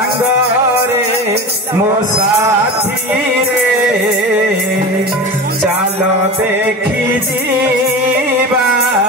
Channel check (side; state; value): both; normal; correlation 0.29